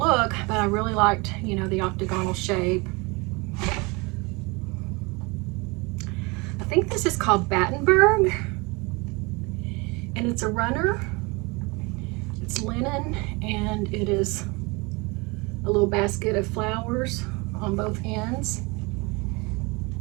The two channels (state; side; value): quieter; left; 27.0 dB